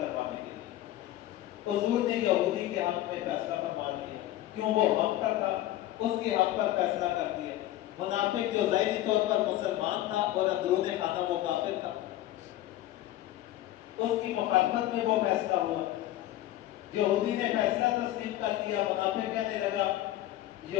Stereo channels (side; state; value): right; quieter; 14.6 dB